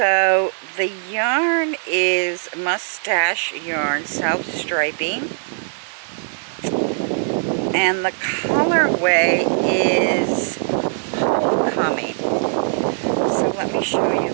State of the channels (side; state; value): left; silent; digital silence